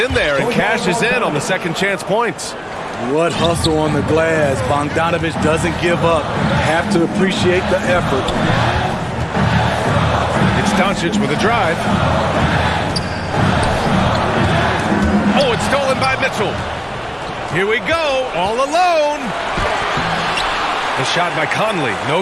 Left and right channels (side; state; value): both; identical; correlation 1.00